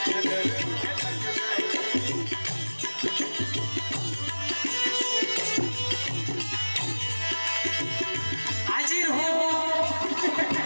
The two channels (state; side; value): inverted; both; correlation -1.00